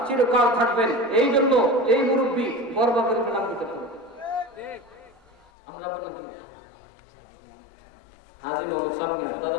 চিরকাল থাকবেন এই জন্য এই মুরব্বী বরবাদের নাম দিতে হবে আমরা বললাম কি হাজী মোহাম্মদ সামিয়া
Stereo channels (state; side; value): drops out; right; at 5.5 s